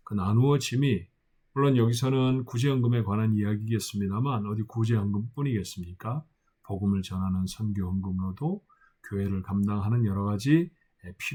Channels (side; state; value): both; identical; correlation 1.00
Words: 그 나누어짐이 물론 여기서는 구제헌금에 관한 이야기겠습니다만 어디 구제헌금뿐이겠습니까? 복음을 전하는 선교헌금으로도 교회를 감당하는 여러 가지